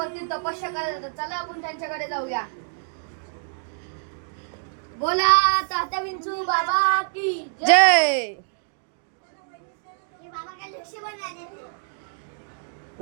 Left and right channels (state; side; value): silent; left; digital silence